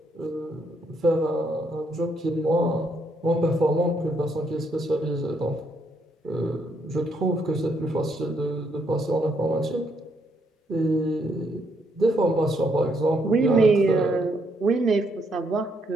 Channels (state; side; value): normal; both; correlation 0.74